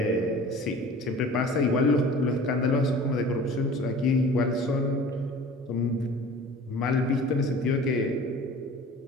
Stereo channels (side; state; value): both; normal; correlation 0.43